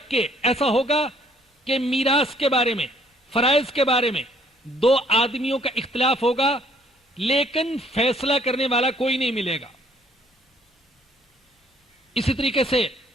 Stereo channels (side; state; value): both; normal; correlation 0.63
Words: کہ ایسا ہوگا کہ میراث کے بارے میں، فرائض کے بارے میں دو آدمیوں کا اختلاف ہوگا، لیکن فیصلہ کرنے والا کوئی نہیں ملے گا۔ اسی طریقے سے